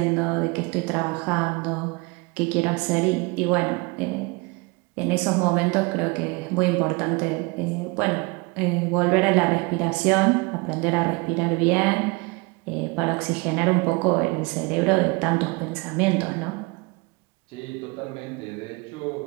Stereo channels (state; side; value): quieter; left; 27.4 dB